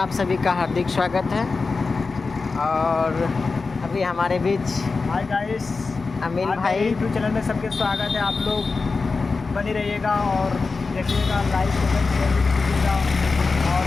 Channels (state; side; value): quieter; right; 4.2 dB